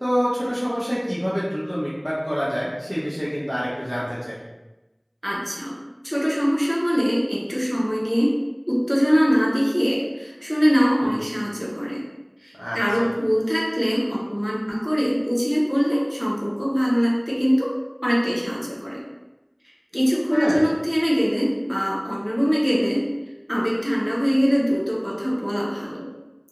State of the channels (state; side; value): identical; both; correlation 1.00